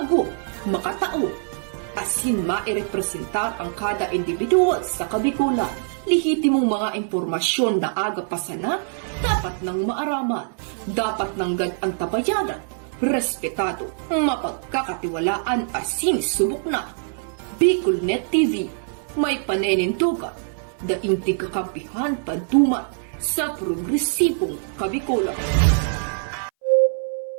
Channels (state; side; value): silent; left; 60 dB below the other